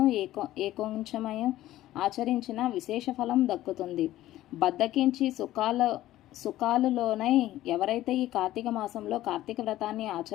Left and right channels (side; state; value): right; quieter; 14.7 dB